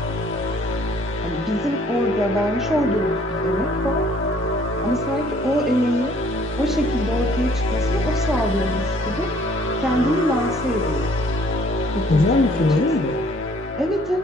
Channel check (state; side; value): normal; both; correlation 0.59